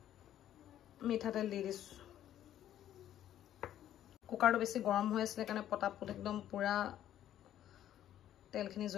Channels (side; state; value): right; quieter; 11.6 dB